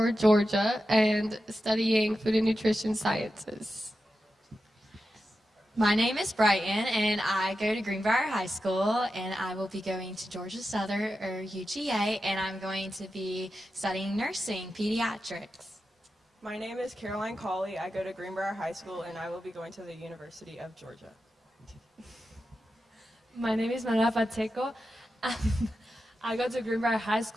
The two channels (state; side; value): normal; both; correlation 0.90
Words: Georgia and studying food and nutrition sciences. My name is Brighton, and I go to Greenbrier High School, and I will be going to Georgia Southern or UGA, and I'm going to be studying nursing, pediatrics. My name is Caroline Cawley. I go to Greenbrier High School, and I will be going to the University of Georgia. My name is Manuela Pacheco. I go to Greenbrier High